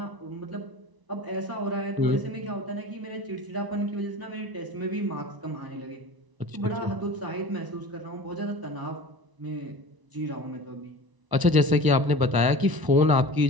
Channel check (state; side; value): late; left; 1.0 ms